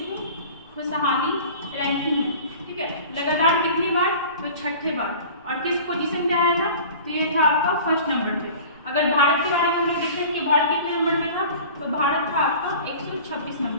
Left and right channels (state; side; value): inverted; both; correlation -0.42